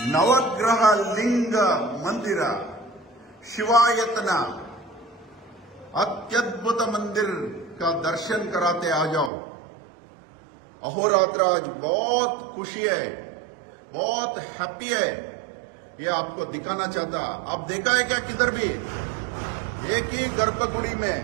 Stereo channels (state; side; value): drops out; left; at 9.3 s